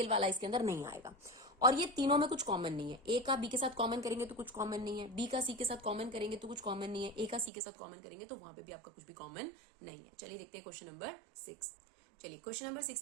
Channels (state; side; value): drops out; left; at 7.5 s